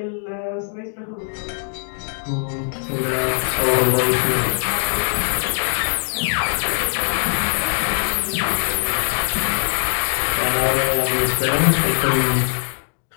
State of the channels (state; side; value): silent; right; digital silence